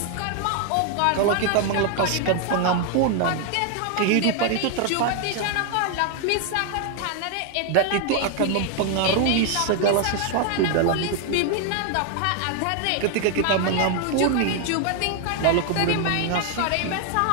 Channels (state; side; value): different; both; correlation 0.01